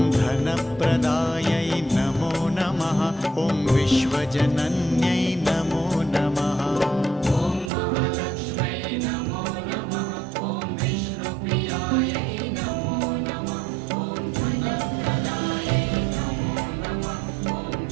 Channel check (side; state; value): left; drops out; at 7.7 s